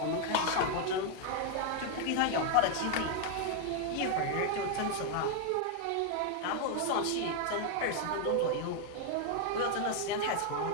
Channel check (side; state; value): both; different; correlation 0.00